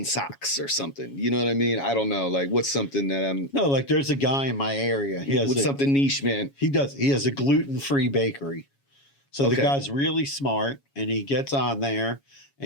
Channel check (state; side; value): late; right; 7.2 ms